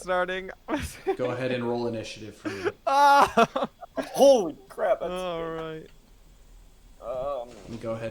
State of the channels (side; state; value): both; identical; correlation 1.00